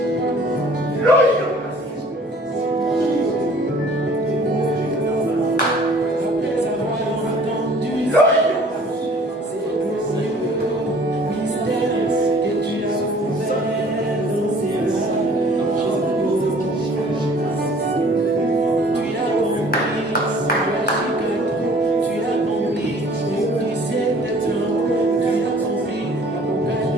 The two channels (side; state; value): both; normal; correlation 0.53